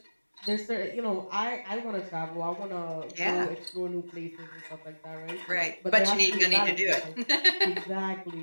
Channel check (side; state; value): both; inverted; correlation -1.00